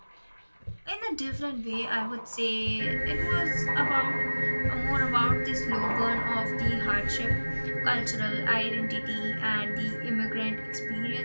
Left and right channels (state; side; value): inverted; both; correlation -1.00